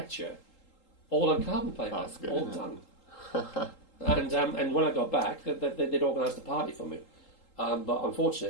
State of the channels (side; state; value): right; late; 3.8 ms